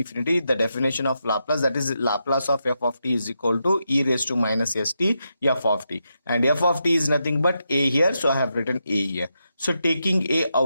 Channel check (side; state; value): both; inverted; correlation -0.85